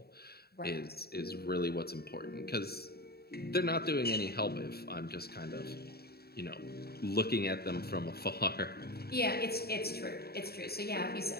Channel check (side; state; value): right; late; 0.46 ms